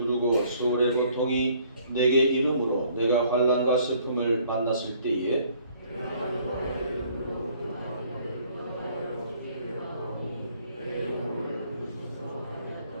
소울의 고통이 내게 이름으로 내가 환난과 슬픔을 만났을 때에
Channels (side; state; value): both; inverted; correlation -0.61